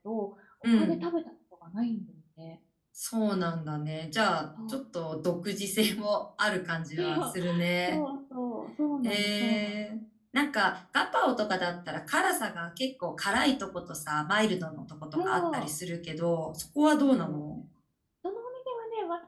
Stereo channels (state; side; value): identical; both; correlation 1.00